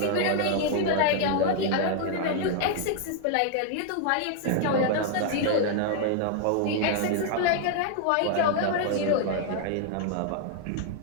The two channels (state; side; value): different; both; correlation 0.00